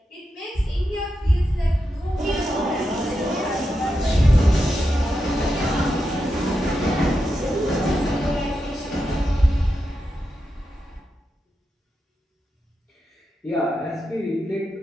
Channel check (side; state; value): both; normal; correlation 0.87